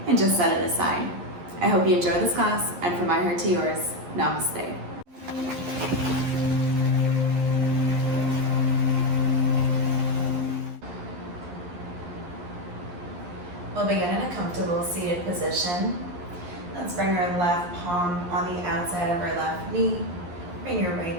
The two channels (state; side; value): late; left; 11 ms